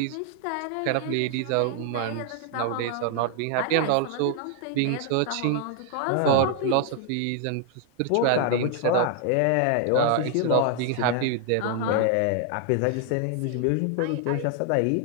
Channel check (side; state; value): both; different; correlation 0.00